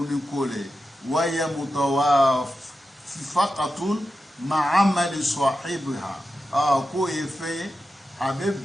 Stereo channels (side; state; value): both; normal; correlation 0.91